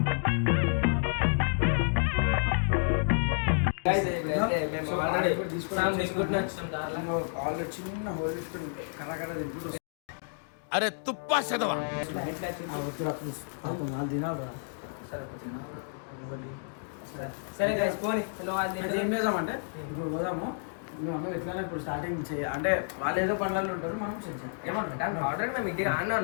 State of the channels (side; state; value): right; silent; digital silence